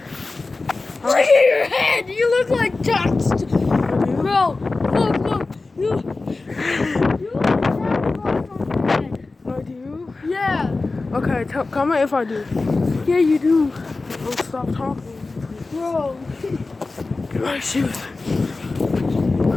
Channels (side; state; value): right; quieter; 3.6 dB